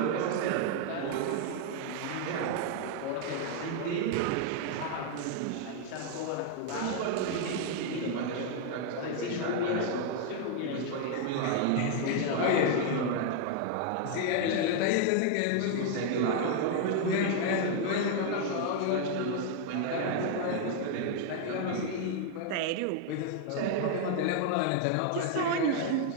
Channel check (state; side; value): different; both; correlation 0.00